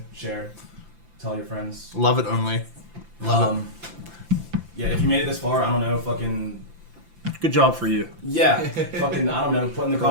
share, tell your friends. Love it only. Love it. Yeah, if you made it this far, I don't know, fucking. Good job for you. Yeah, fucking, I don't know, put in the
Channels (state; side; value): late; left; 5.9 ms